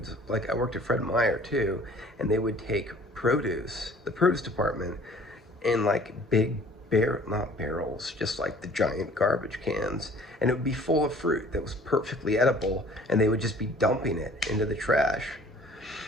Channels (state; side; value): normal; both; correlation 0.52